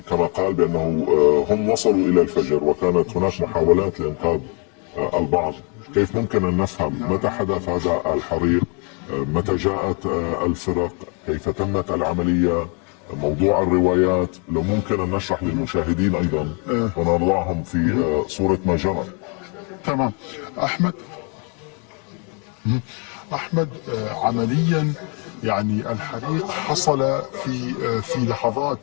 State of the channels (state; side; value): quieter; right; 35.8 dB